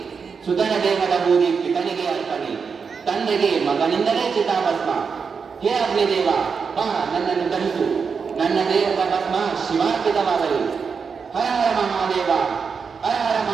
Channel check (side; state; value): left; quieter; 5.7 dB